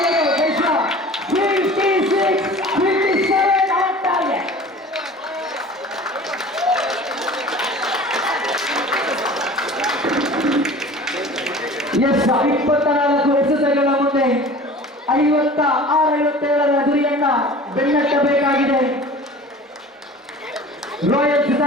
ಎಸ್ 24 ಎಸೆತಗಳ ಮುಂದೆ 56-57 ಗುರಿಯನ್ನ ಬೆನ್ನಟ್ಟಬೇಕಾಗಿದೆ ರಾಯಲ್ಸ್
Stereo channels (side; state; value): both; normal; correlation 0.42